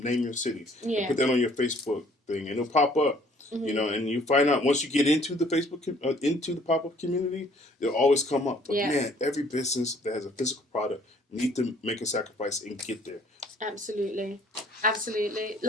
name your city. And put that on your Facebook thing, and it'll pop up. And you find out once you get into the Facebook, into the pop-up community, it'll always come up. But man, every business that has a physical product need to make a sacrifice and get there. Absolutely.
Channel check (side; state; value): both; normal; correlation 0.59